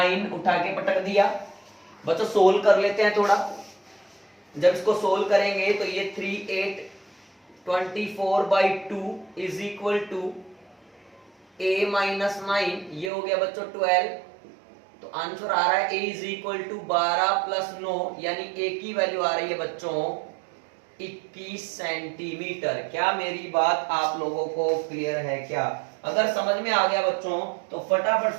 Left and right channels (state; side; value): drops out; left; at 13.1 s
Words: उठा के पटक दिया। बच्चों सोल्व कर लेते हैं थोड़ा। जब इसको सोल्व करेंगे तो ये 3 8 24/2 is equal to a minus 9, ये हो गया बच्चों 12। तो आंसर आ रहा है a is equal to 12 plus 9, यानी a की वैल्यू आ रही है बच्चों 21 सेंटीमीटर। क्या मेरी बात आप लोगों को क्लियर है क्या? अगर समझ में आ गया बच्चों तो फटाफट